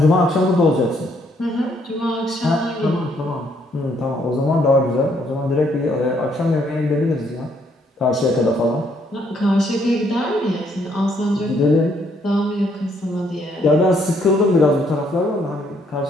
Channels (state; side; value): normal; both; correlation 0.69